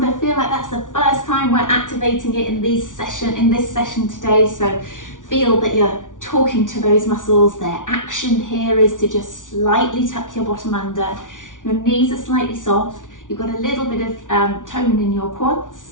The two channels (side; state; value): right; late; 0.87 ms